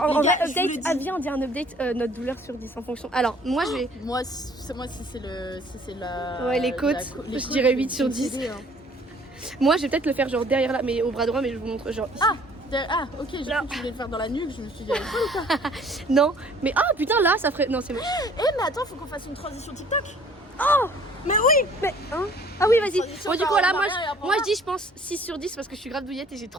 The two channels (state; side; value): normal; both; correlation 0.55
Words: en Les vrai, gars, je vous le update, dis. viens, on dit un update, notre douleur sur 10 en fonction. Alors, moi, je vais. Moi, si c'est la... Ouais, les côtes, je dirais 8 sur 10. Moi, je vais peut-être le faire genre derrière là, mais au bras droit, mais je vous montre genre. Ah, ok, j'ai cru que tu voulais le faire dans la nuque, je me suis dit... Non, mais ah putain, là, ça ferait. Non, c'est moche. mais attends, faut qu'on fasse une transition TikTok. Mais oui, mais. Hein ah oui, vas-y. Transition Bon, du par coup, là, en arrière et après en moi, bas. je dis, je pense 6 sur 10 parce que je suis grave douillette et j'ai